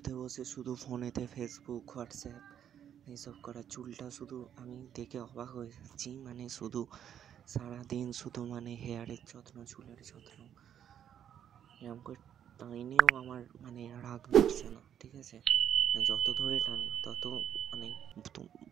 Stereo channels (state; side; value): quieter; left; 9.5 dB